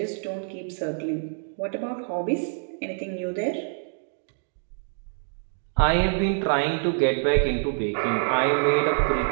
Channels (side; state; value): left; silent; digital silence